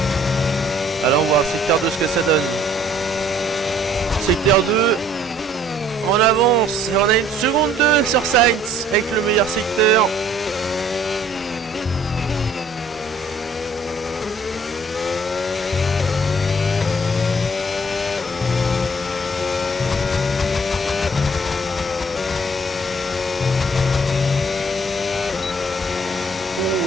Alors on va voir le secteur 2 ce que ça donne. Secteur 2. On avance et on a une seconde 2 sur Sainz avec le meilleur secteur. Oh,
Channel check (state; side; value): normal; both; correlation 0.58